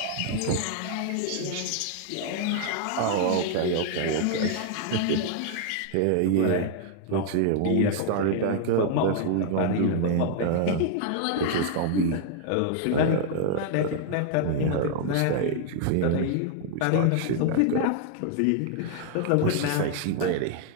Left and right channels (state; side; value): different; both; correlation 0.00